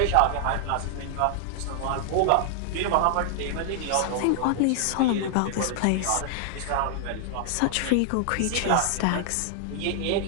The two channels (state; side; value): different; both; correlation 0.00